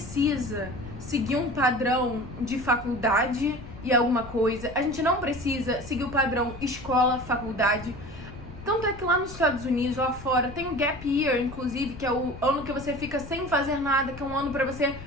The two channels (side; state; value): left; noise; rumble, 14 dB below the sound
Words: seguir um padrão de faculdade e alguma coisa. A gente não precisa seguir o padrão escola, faculdade. Tanto é que lá nos Estados Unidos, lá fora, tem o Gap Year, inclusive, que é o ano que você fica sem fazer nada, que é um ano pra você,